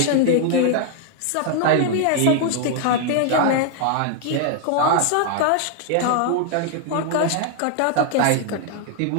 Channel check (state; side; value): different; both; correlation 0.00